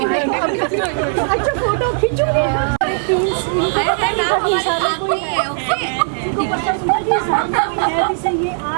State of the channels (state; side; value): silent; left; 57 dB below the other